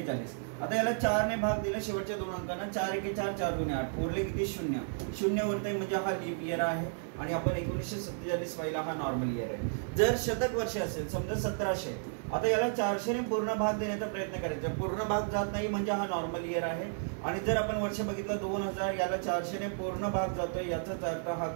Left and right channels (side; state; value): left; silent; 56 dB below the other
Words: आता याला 4 ने भाग दिला शेवटच्या दोन अंकांना, 4 एके 4, 4 दुने 8, उरले किती शून्य उरतंय, म्हणजे हा लीप इयर आहे. आणि आपण 1947 पाहिला, हा नॉर्मल इयर आहे. जर शतक वर्ष असेल, समजा 1700, आता याला 400 ने पूर्ण भाग देण्याचा प्रयत्न करायचा. पूर्ण भाग जात नाही म्हणजे हा नॉर्मल इयर आहे. आणि जर आपण वर्ष बघितलं 2000, याला 400 ने पूर्ण भाग जातोय, याचाच अर्थ हा